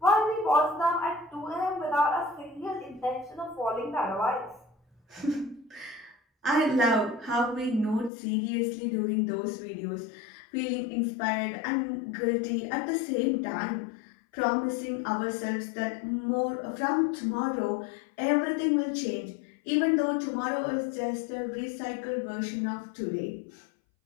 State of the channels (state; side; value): drops out; right; at 8.1 s